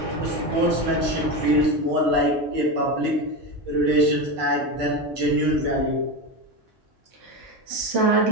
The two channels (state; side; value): normal; both; correlation 0.18